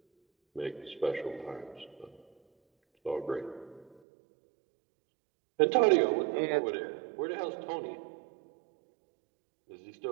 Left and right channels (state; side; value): drops out; left; at 4.0 s